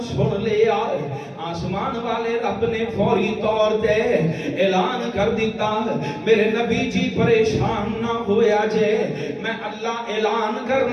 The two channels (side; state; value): both; identical; correlation 1.00